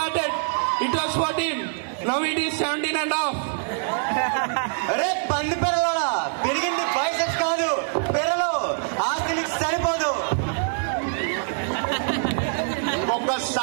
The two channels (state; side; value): silent; left; 62 dB below the other